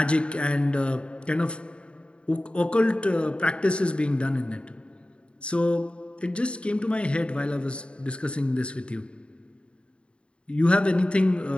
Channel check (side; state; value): right; late; 0.056 ms